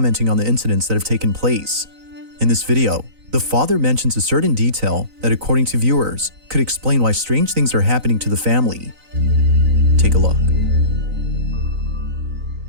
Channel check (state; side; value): late; left; 3.9 ms